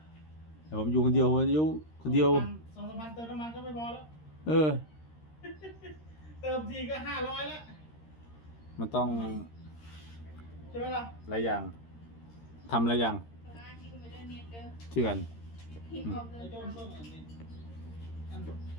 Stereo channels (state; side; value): late; right; 13 ms